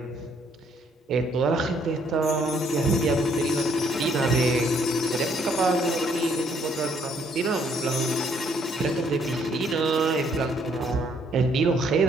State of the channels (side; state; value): both; normal; correlation 0.67